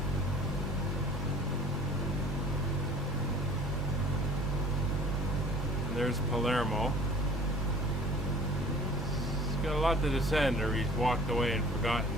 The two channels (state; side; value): normal; both; correlation 0.49